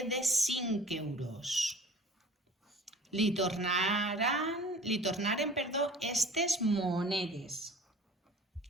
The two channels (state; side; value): normal; both; correlation 0.44